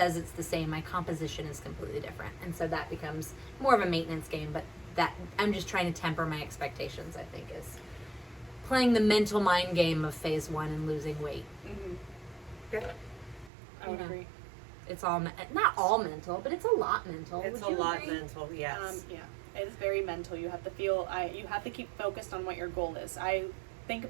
it's the same, my composition is completely different. And so that becomes more of a maintenance game, but that I'm just trying to temper my expectations, I think, is playing the mental mind game of phase 1 and losing weight. Mm-hmm. Yeah. I would agree. It's all, not all mental, but it's a lot mental. It's Would a you lot agree? mental, yes. Yeah. It is very mental. You have to feel, you have to keep focused on what your goal is. I think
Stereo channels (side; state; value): left; drops out; at 13.5 s